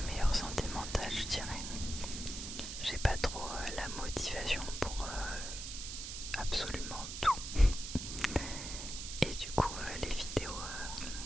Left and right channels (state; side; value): noise; right; hiss, 7 dB below the sound